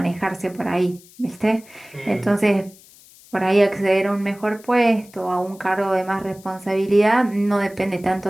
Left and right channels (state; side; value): noise; left; hiss, 24 dB below the sound